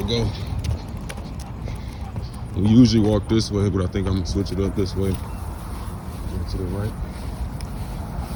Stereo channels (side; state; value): both; identical; correlation 1.00